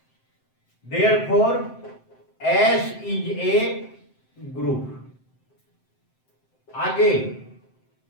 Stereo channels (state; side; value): late; right; 7.7 ms